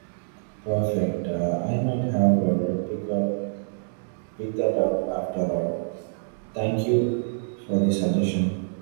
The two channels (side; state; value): left; silent; digital silence